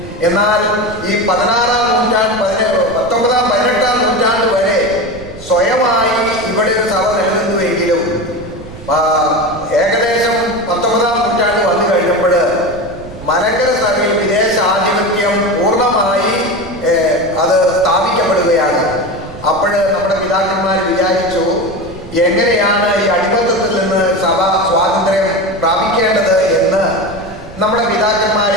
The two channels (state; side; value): noise; right; rumble, 16 dB below the sound